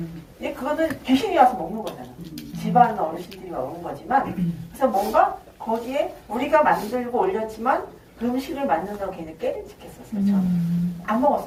근데 그거는 귀신이 와서 먹는 거잖아. 집안 어르신들이 먹는 거지만 그래서 뭔가 거기에 우리가 만들고 올렸지만 그 음식을 만든다고 걔는 깨름직했었어요. 저는 안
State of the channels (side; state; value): both; identical; correlation 1.00